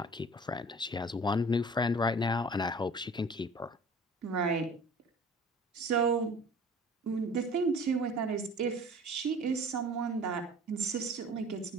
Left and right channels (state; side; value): normal; both; correlation 0.45